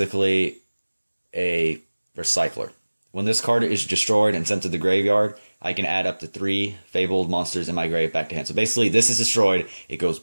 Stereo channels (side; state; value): both; inverted; correlation -1.00